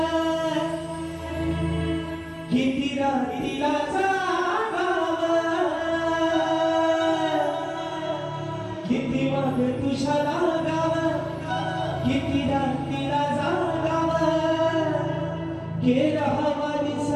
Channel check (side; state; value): both; identical; correlation 1.00